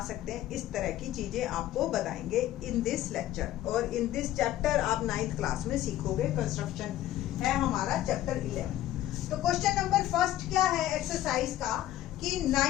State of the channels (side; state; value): right; quieter; 13.7 dB